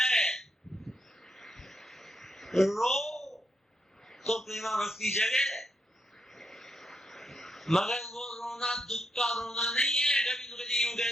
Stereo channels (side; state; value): both; normal; correlation 0.81